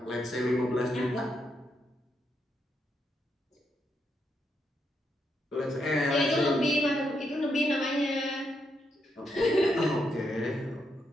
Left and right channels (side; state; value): both; normal; correlation 0.80